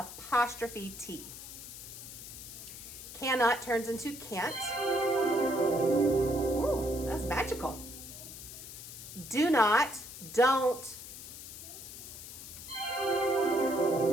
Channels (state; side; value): noise; left; hiss, 12 dB below the sound